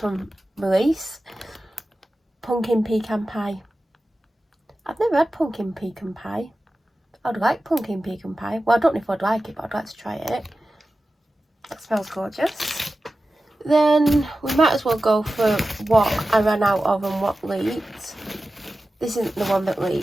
release. Pumpkin pecan pie. I've never had pumpkin pecan pie. I'd like pumpkin pecan pie. Well, I don't know if I'd like it, but I'd like to try it. That smells gorgeous. Then we might as well go for what I ran out of and what leaked. This isn't the one that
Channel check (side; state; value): both; normal; correlation 0.94